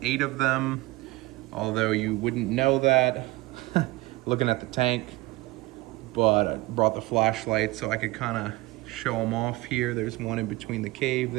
8 of them, although you wouldn't know that looking at the tank, but I brought the flashlight so I could kind of show them off here. There's one in between the cave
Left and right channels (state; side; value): quieter; left; 20.6 dB